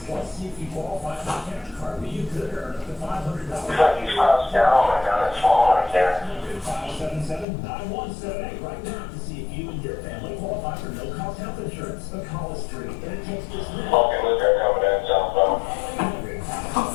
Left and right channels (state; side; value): drops out; right; at 7.5 s